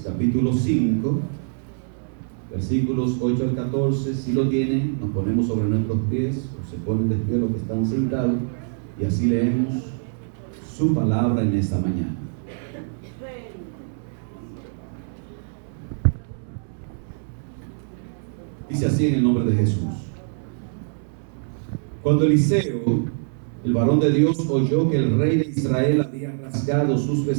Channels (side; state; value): left; silent; 63 dB below the other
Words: capítulo 5. Versículos 8 al 14, si lo tienen, nos ponemos sobre nuestros pies, o se ponen de pie los que están sentados, y así leemos su palabra en esta mañana. Dice así en el nombre de Jesús. Cuando Eliseo, el varón de Dios, oyó que el rey de Israel había rasgado sus